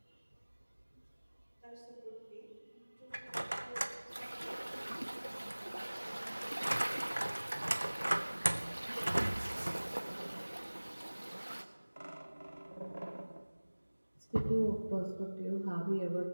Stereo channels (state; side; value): inverted; both; correlation -1.00